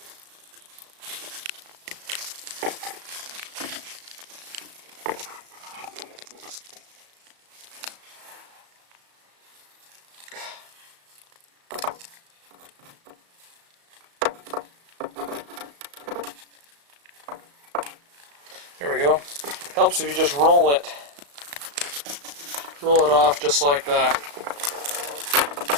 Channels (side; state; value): left; late; 35 ms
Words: There we go. Helps if you just roll it. Roll it off just like that.